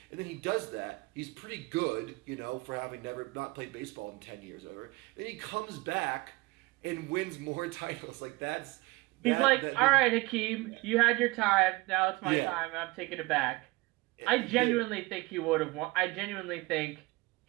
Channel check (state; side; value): quieter; left; 22.7 dB